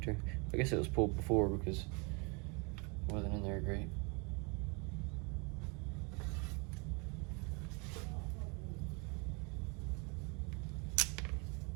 I guess it was pulled before because it wasn't in there great.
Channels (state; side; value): quieter; left; 31.6 dB